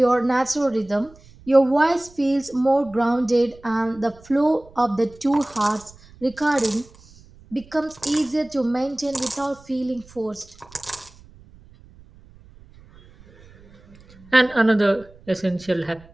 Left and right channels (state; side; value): noise; right; rumble, 25 dB below the sound